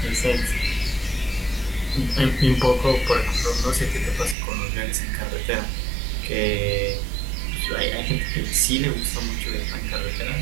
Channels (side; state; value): left; drops out; at 4.4 s